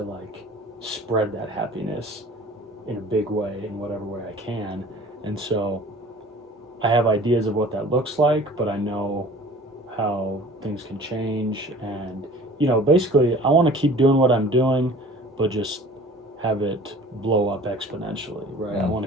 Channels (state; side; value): normal; both; correlation 0.46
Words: like spread that happiness in a big way, in whatever way I can. And so I have ideas of what that looks like, but I know how things can change. And, basically I want to keep doing what I'm doing, but just have it blow up exponentially, right? I